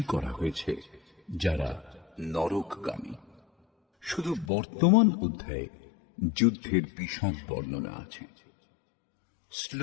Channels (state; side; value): drops out; right; at 4.5 s